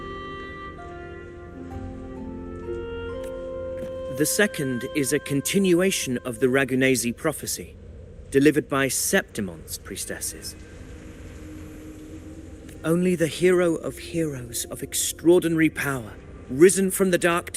The second is a continuation of the Ragunesi prophecy, delivered by Septimonte's priestesses. Only the hero of heroes of extraordinary power, risen from the dark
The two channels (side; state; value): both; identical; correlation 1.00